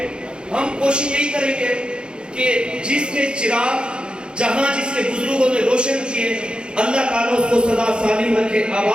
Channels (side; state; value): left; late; 0.052 ms